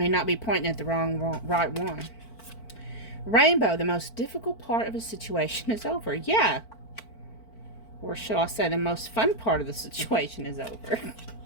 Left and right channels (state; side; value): late; right; 4.5 ms